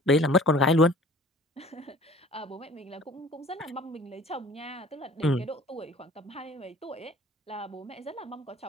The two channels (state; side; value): normal; both; correlation 0.48